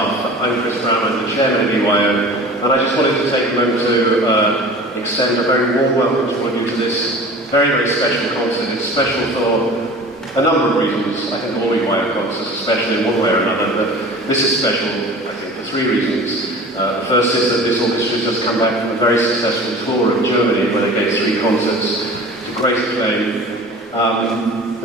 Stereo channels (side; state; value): both; normal; correlation 0.40